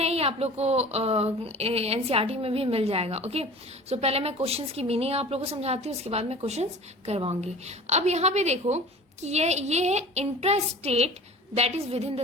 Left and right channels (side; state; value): both; normal; correlation 0.41